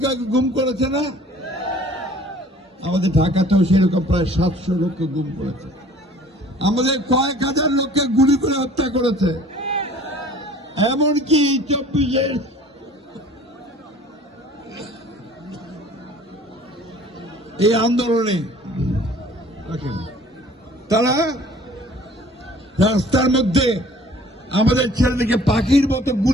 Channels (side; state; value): both; normal; correlation 0.51